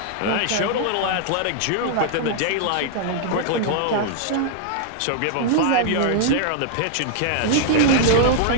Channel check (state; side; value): different; both; correlation -0.01